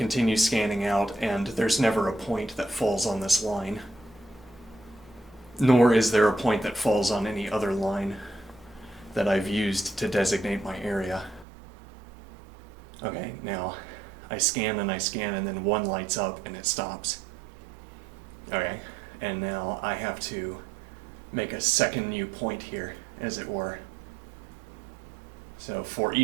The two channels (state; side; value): drops out; left; at 11.5 s